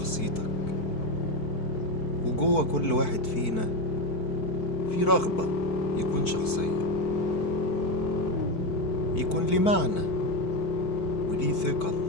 وجوه كل واحد فينا في رغبة يكون شخصية، يكون ليه معنى وليه ثقل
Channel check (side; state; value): right; late; 4.5 ms